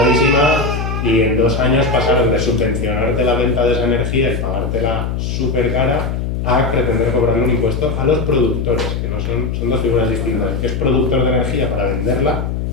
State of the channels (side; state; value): left; noise; hum, 2 dB below the sound